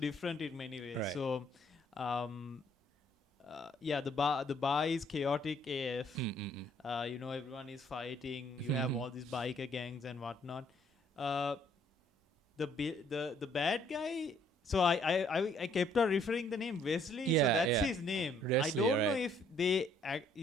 in many ways. Right. So the bar is chaotic AF. Mm. Everyone is fighting. You have all these biker gangs and whatnot. The bad guy. So I kept on referring the name Wesley. So that's his name. Wesley, I don't know right. if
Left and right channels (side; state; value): both; normal; correlation 0.64